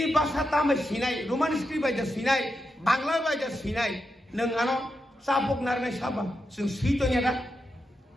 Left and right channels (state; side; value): normal; both; correlation 0.87